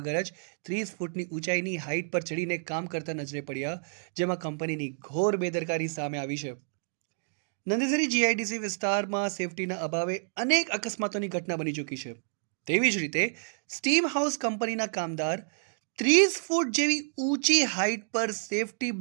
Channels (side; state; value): left; silent; digital silence